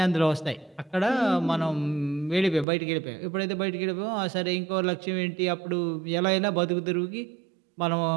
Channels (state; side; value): drops out; left; at 2.7 s